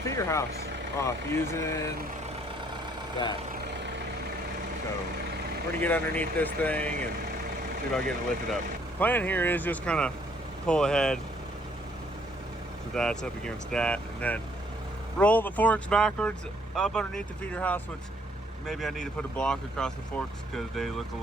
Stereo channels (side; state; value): both; normal; correlation 0.65